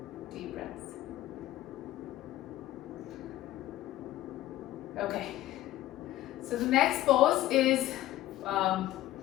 Deep breaths. Okay. So the next pose is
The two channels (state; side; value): quieter; right; 14.9 dB